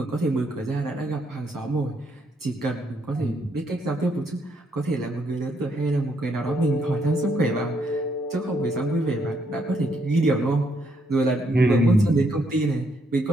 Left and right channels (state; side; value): normal; both; correlation 0.74